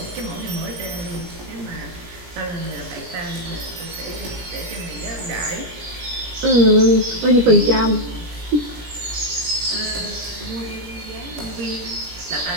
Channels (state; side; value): late; left; 17 ms